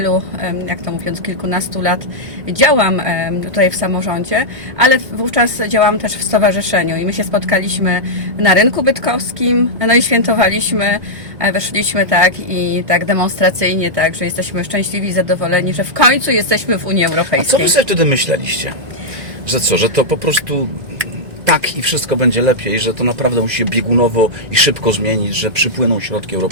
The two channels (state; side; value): late; left; 1.6 ms